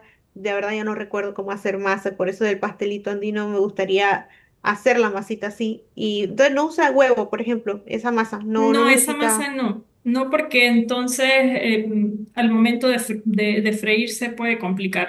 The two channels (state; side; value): identical; both; correlation 1.00